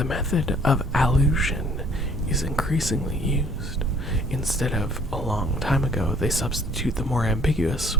method of allusion is increasingly used. Instead of a long time ago, they substitute the more ambiguous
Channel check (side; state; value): both; normal; correlation 0.58